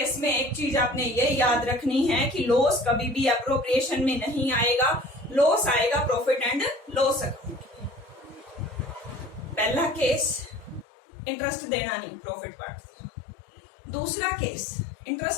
में एक चीज आपने ये याद रखनी है कि लॉस कभी भी अप्रोप्रिएशन में नहीं आएगा, लॉस आएगा प्रॉफिट एंड लॉस अकाउंट। पहला केस इंटरेस्ट देना नहीं, प्रॉफिट पार्ट। दूसरा केस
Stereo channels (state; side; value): drops out; right; at 10.9 s